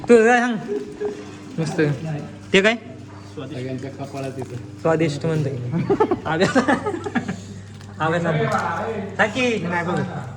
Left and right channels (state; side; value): identical; both; correlation 1.00